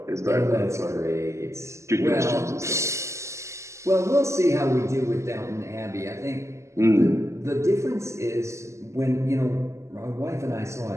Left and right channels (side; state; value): left; late; 0.14 ms